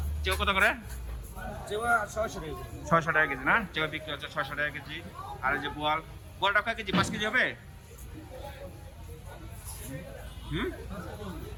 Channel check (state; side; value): identical; both; correlation 1.00